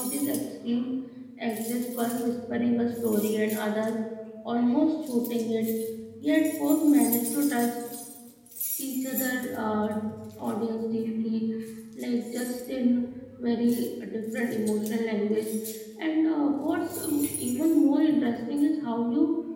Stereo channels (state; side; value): identical; both; correlation 1.00